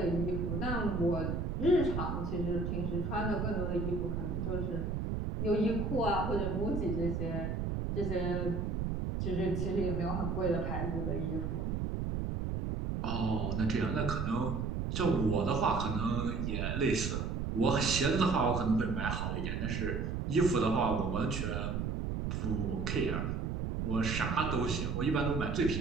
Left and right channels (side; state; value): right; noise; rumble, 1 dB below the sound